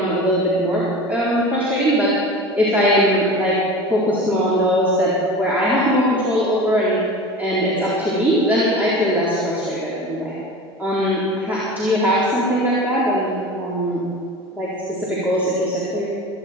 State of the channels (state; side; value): normal; both; correlation 0.34